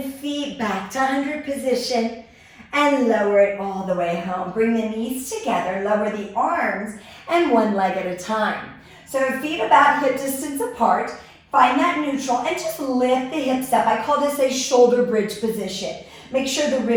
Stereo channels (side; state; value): both; identical; correlation 1.00